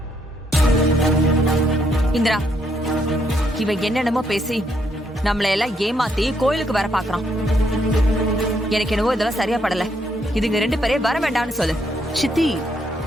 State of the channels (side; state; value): both; normal; correlation 0.74